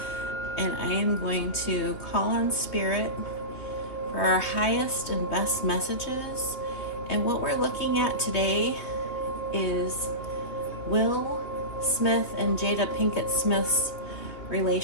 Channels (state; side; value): late; right; 3.2 ms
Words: and I am going to call on Spirit for our highest and best messages. And what we're looking at today is Will Smith and Jada Pinkett Smith's